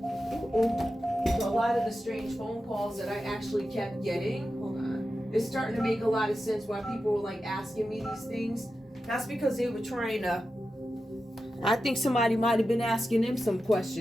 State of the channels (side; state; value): both; normal; correlation 0.91